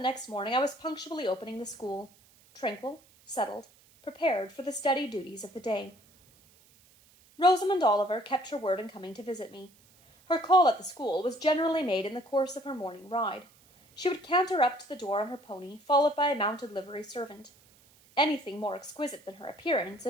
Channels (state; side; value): noise; right; hiss, 29 dB below the sound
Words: morning I was punctually opening the school, tranquil, settled, prepared for the steady duties of the day. Rosamond Oliver kept her word in coming to visit me. Her call at the school was generally made in the course of her morning ride. She would canter up to the door on her pony, followed by a mounted livery servant. Anything more exquisite than her appearance,